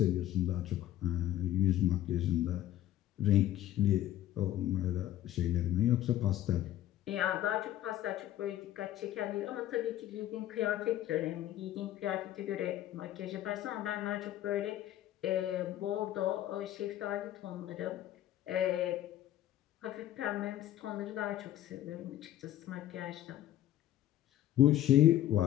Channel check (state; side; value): quieter; right; 13.0 dB